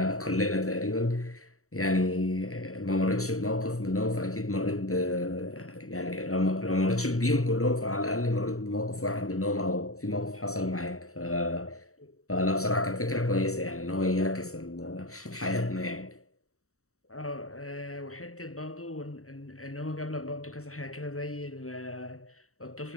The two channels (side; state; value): right; late; 0.64 ms